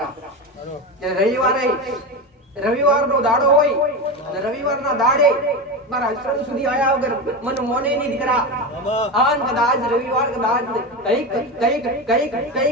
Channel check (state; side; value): normal; both; correlation 0.20